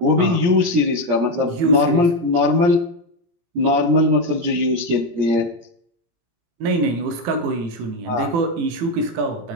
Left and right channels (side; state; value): left; late; 18 ms